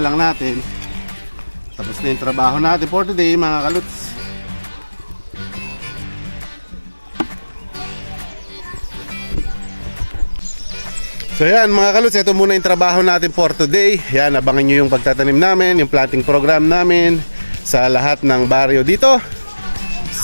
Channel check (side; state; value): both; inverted; correlation -1.00